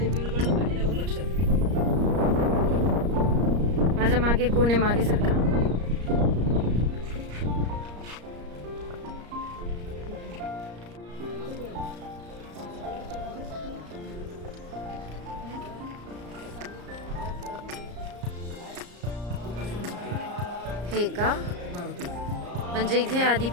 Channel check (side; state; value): left; late; 34 ms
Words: विरगळ पाहिल्यावर लक्षात येईल. माझ्या मागे कोण आहे? मागे सारखा. हे का? मारुती म्हणजे इथे